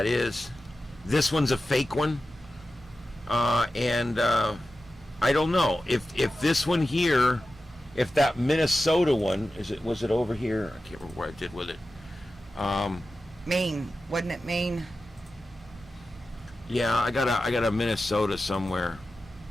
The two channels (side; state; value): both; normal; correlation 0.93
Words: is. This one's a fake one, and I don't know if this one here, if that Minnesota one was it over here? I can't remember what I did with it. Maine, wasn't it Maine? Yeah, I got a Minnesota somewhere.